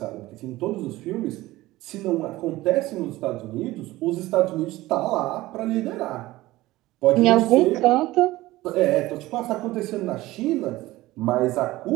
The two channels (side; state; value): left; quieter; 17.9 dB